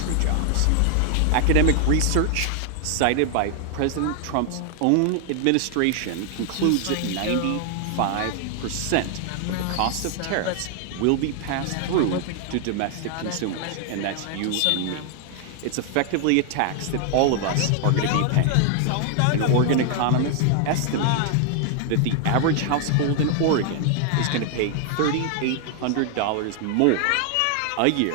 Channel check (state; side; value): different; both; correlation 0.00